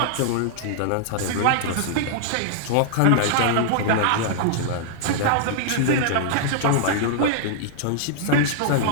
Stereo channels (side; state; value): both; different; correlation -0.01